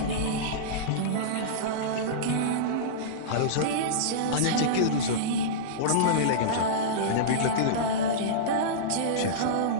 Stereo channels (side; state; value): both; different; correlation -0.04